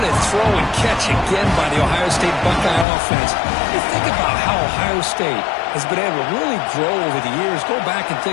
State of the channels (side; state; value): right; drops out; at 2.9 s